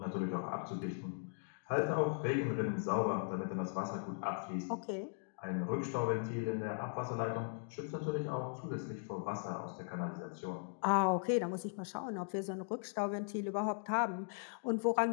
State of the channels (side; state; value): right; silent; digital silence